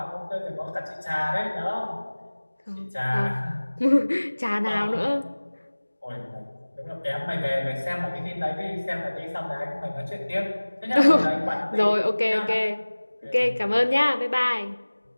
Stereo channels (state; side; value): inverted; both; correlation -1.00